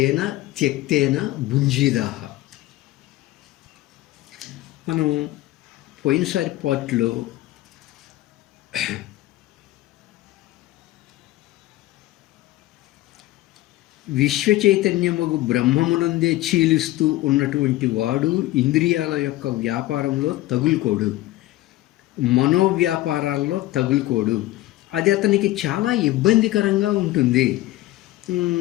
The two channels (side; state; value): right; quieter; 16.6 dB